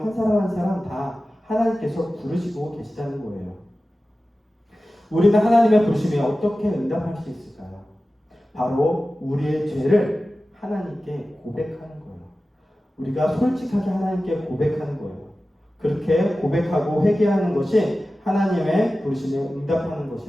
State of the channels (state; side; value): normal; both; correlation 0.95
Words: 사람 한 사람 다 하나님께서 부르시고 계시다는 거예요. 우리는 하나님의 부르심에 어떻게 응답할 수 있을까요? 바로 우리의 죄를 하나님께 고백하는 거예요. 우리가 솔직하게 하나님께 고백하는 거예요. 그렇게 고백하고 회개하는 것이 하나님의 부르심에 응답하는